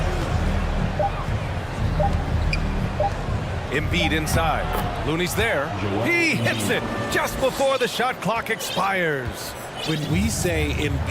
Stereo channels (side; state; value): both; identical; correlation 1.00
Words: Embiid inside. Looney's there. He hits it just before the shot clock expires. When we say